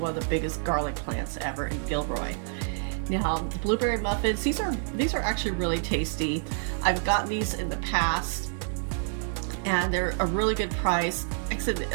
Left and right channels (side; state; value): left; silent; digital silence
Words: of the biggest garlic plants ever in Gilroy. Now the blueberry muffins, these are actually really tasty. I've gotten these in the past and they're a really good price. Like I said, it